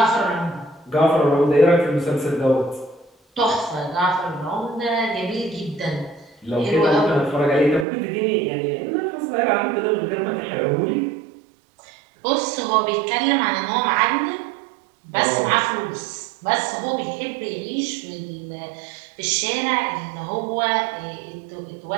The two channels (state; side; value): drops out; left; at 7.9 s